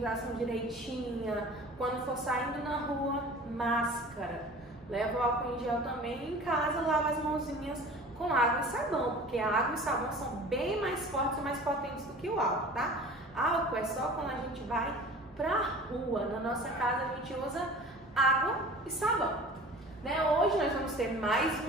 direitinha. Quando for saindo na rua, máscara. Leva o álcool em gel também. Em casa, lava as mãozinhas com água e sabão, porque a água e sabão são bem mais fortes e mais potentes do que o álcool, tá? Álcool é só quando a gente vai pra rua. Na nossa casa a gente usa água e sabão. Né? Hoje nós vamos ter mais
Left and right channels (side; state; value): both; normal; correlation 0.42